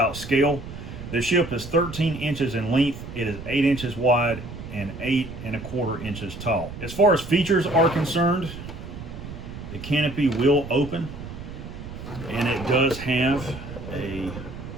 scale. The ship is 13 inches in length. It is 8 inches wide and 8 1/4 inches tall. As far as features are concerned, the canopy will open, and it does have a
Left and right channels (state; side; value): noise; right; rumble, 11 dB below the sound